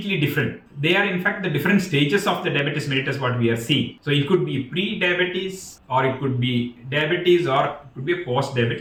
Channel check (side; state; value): both; identical; correlation 1.00